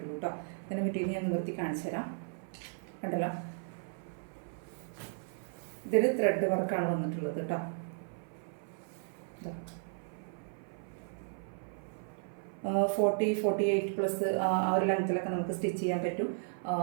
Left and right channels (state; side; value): silent; left; 55 dB below the other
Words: കേട്ടോ. ഇതിൻ്റെ മെറ്റീരിയൽ ഞാൻ നിവർത്തി കാണിച്ചു തരാം. കണ്ടല്ലോ, ഇതിൽ ത്രെഡ് വർക്കാണ് വന്നിട്ടുള്ളത് കേട്ടോ. 48 പ്ലസ് ആ ഒരു ലെങ്ത്തിലൊക്കെ നമുക്ക് സ്റ്റിച്ച് ചെയ്യാൻ പറ്റും.